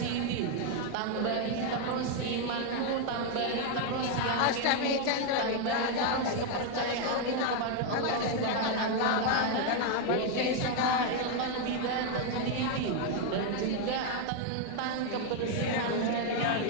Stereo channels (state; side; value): different; both; correlation 0.01